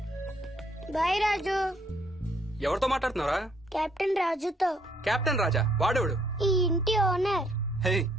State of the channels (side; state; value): both; normal; correlation 0.68